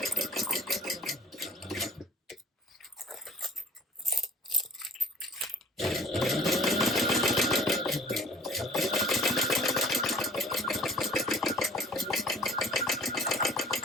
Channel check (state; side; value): normal; both; correlation 0.48